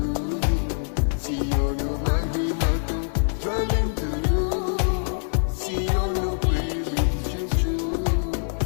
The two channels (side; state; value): right; silent; digital silence